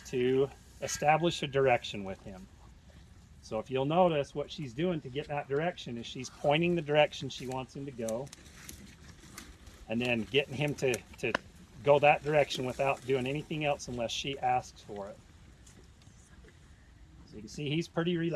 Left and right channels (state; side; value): identical; both; correlation 1.00